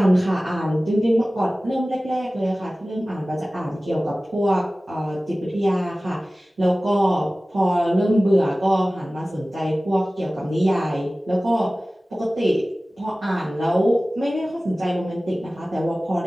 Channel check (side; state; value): both; normal; correlation 0.97